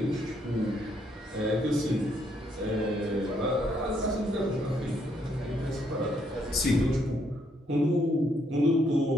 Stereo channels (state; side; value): normal; both; correlation 0.72